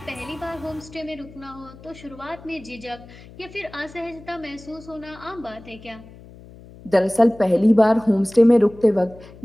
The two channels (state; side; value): noise; left; hum, 20 dB below the sound